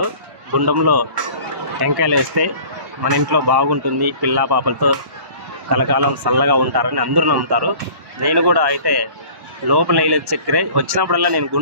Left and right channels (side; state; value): left; late; 1.1 ms